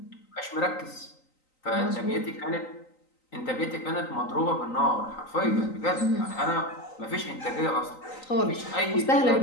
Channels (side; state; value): right; late; 3.9 ms